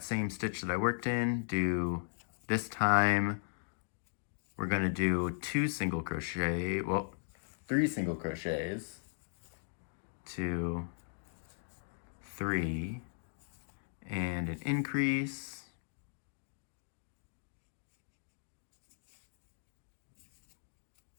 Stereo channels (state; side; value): silent; right; digital silence